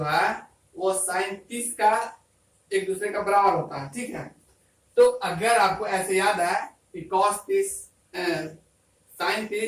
है वो साइन 30 का एक दूसरे का बराबर होता है, ठीक है। तो अगर आपको ऐसे याद है कि cos 30 sin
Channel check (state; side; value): identical; both; correlation 1.00